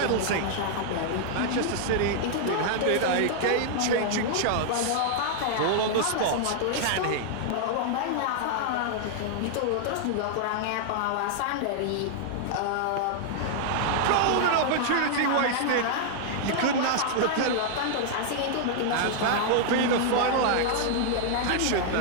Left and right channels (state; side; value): different; both; correlation -0.01